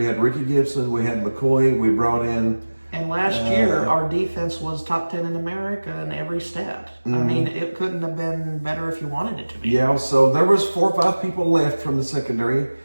had Ricky Gibson, we had McCoy, we brought in. And last year our defense was top 10 in America in every stat. Mm-hmm. I mean, it couldn't have been better if you wanted it to be. Yeah, so there was 4 or 5 people left from the secondary,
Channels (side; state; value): both; inverted; correlation -1.00